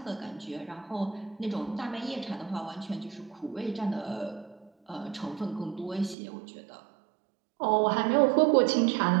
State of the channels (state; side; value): drops out; left; at 6.2 s